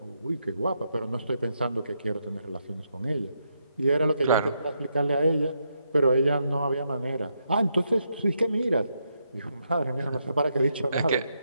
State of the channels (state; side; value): inverted; both; correlation -0.80